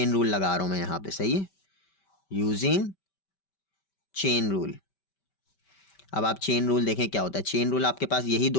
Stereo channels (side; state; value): right; late; 5.2 ms